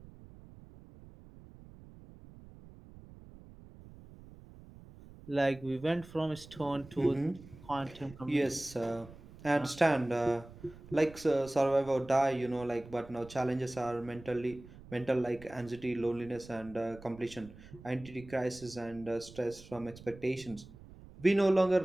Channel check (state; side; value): noise; right; rumble, 19 dB below the sound